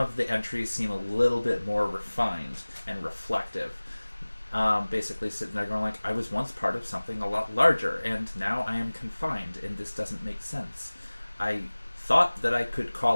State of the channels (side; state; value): both; inverted; correlation -1.00